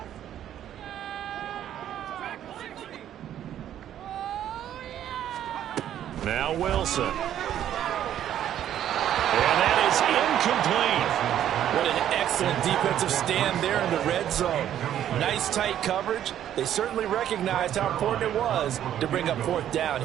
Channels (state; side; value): quieter; left; 10.9 dB